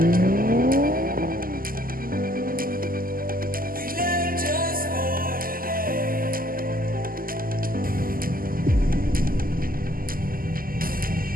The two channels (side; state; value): left; late; 0.42 ms